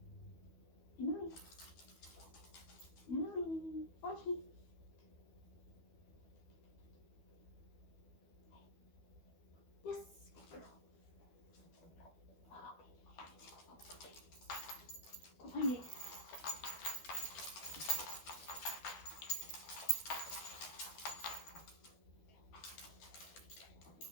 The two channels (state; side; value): late; right; 12 ms